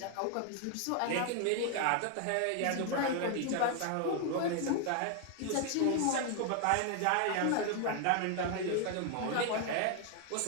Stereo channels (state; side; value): different; both; correlation 0.00